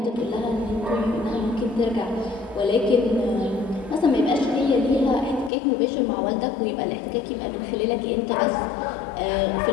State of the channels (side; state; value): right; drops out; at 5.5 s